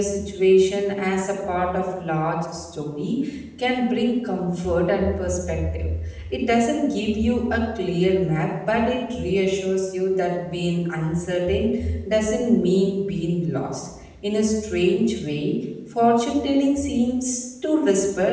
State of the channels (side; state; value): both; identical; correlation 1.00